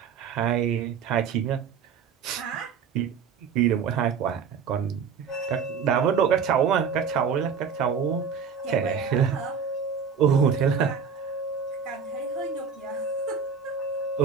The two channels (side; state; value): left; quieter; 6.5 dB